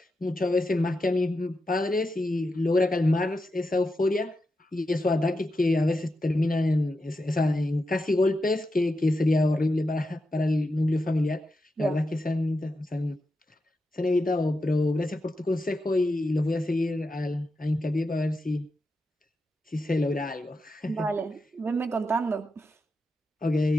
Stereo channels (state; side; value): normal; both; correlation 0.88